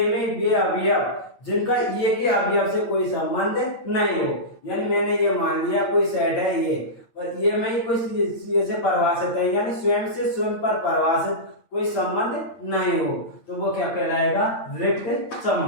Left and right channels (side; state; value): right; late; 8.8 ms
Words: में वे अवयव जिनका ये के अवयव से कोई संबंध नहीं हो, यानी मैंने ये मान लिया कोई सेट है ये और ये में ही कोई ये से परिभाषित है, यानी स्वयं से स्वयं पर परिभाषित कोई संबंध नहीं हो, तो वो क्या कहलाएगा, रिक्त